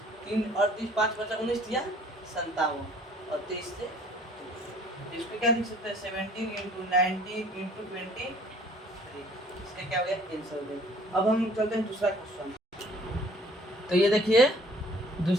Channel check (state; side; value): normal; both; correlation 0.55